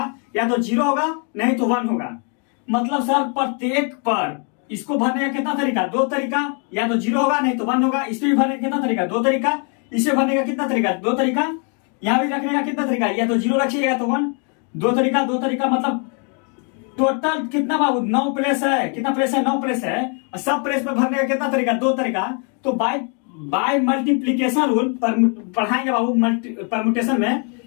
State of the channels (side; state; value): right; quieter; 39.1 dB